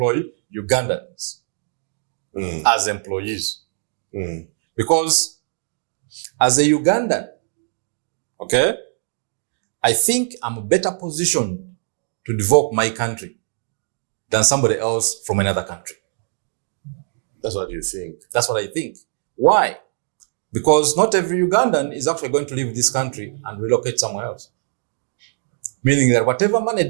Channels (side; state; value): left; silent; digital silence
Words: Ugandans as employees. Because as a Ugandan, okay, I think I'm better positioned to develop my country than somebody else from another country. That's what you think. That's what I think. Why? Because not every Ugandan is actually going to leave this country and relocate somewhere else. Meaning that whatever money